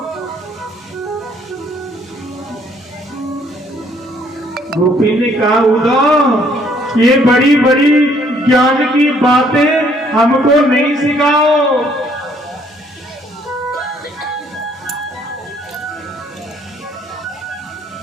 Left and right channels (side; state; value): both; normal; correlation 0.64